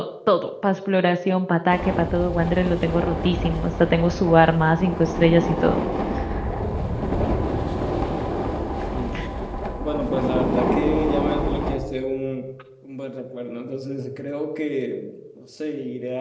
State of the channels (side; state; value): both; identical; correlation 1.00